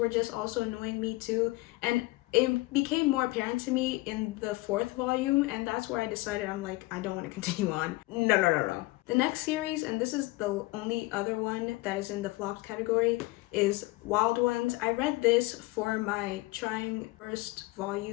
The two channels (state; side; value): quieter; right; 21.6 dB